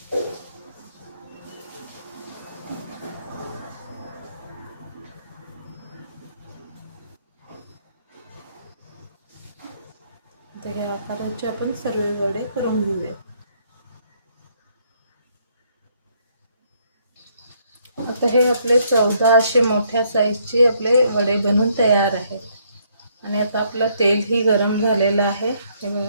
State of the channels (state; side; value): inverted; both; correlation -0.69